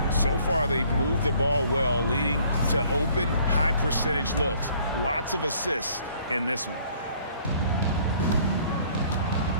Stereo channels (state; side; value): inverted; both; correlation -0.59